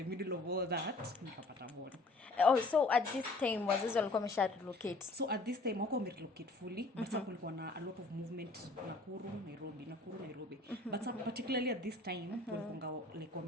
middle of all that nikapata born. Oh, so at this time wazazi walikuwa wamesha relocate? So at this time wako relocate fully, but kulikuwa na a lot of movement Nakuru Nairobi. But particularly at this time walikuwa like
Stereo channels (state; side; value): quieter; right; 3.1 dB